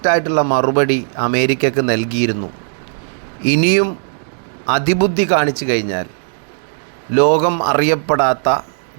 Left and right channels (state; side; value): silent; left; digital silence